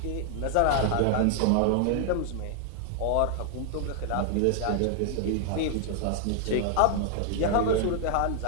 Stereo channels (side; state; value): both; different; correlation 0.00